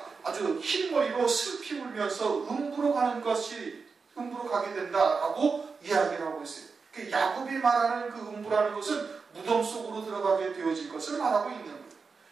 아주 흰머리로 슬피 울면서 음부로 가게 된다라고 이야기를 하고 있어요. 그 야곱이 말하는 그 음부라는 것은 무덤 속으로 들어가게 되어질 것을 말하고 있는 거예요.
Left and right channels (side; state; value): left; quieter; 4.9 dB